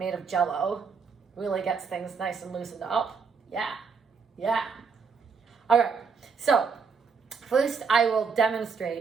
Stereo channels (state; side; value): quieter; left; 5.5 dB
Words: of Jell-O. Really gets things nice and loosened up. Yeah. All right, so first I will